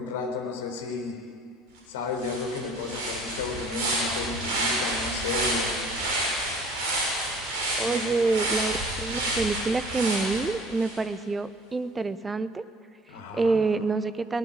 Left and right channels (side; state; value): both; normal; correlation 0.52